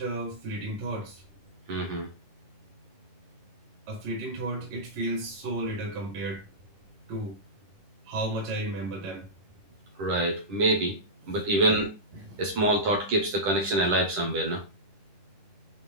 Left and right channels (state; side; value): late; left; 10 ms